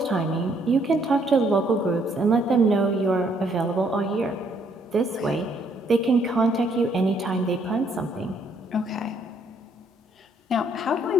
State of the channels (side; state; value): both; normal; correlation 0.68